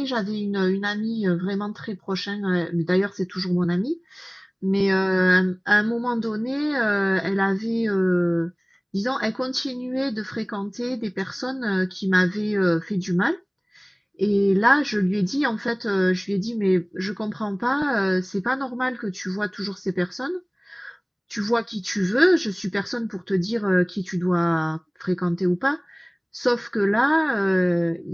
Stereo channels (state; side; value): identical; both; correlation 1.00